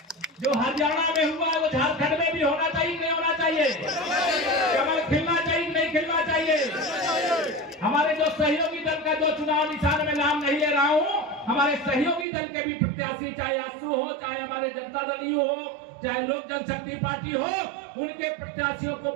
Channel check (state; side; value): drops out; left; at 12.2 s